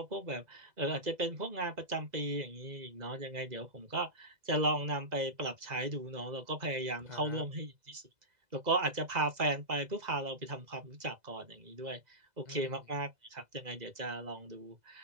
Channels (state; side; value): late; left; 2.0 ms